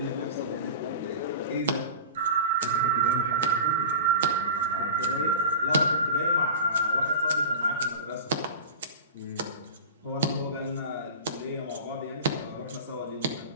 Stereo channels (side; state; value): both; inverted; correlation -0.32